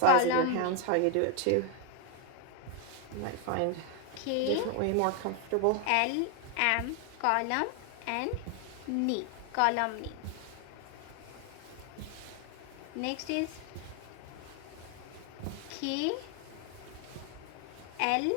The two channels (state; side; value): different; both; correlation 0.00